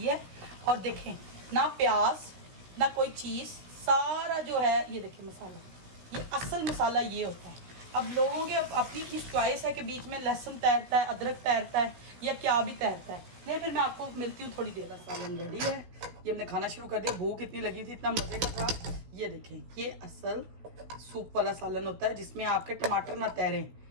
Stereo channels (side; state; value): left; late; 16 ms